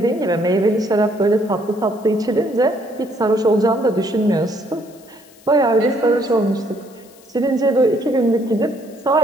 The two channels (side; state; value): left; noise; hiss, 26 dB below the sound